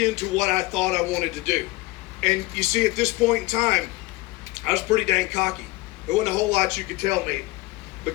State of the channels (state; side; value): quieter; right; 21.7 dB